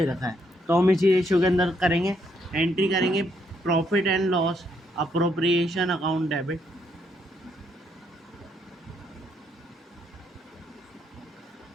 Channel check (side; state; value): both; normal; correlation 0.73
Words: रखा है, तो हम इसी रेशियो के अंदर करेंगे, एंट्री करेंगे। Profit and loss appropriation account debit,